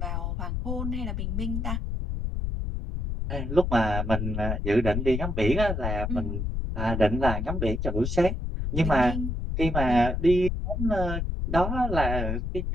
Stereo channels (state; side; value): noise; left; rumble, 2 dB below the sound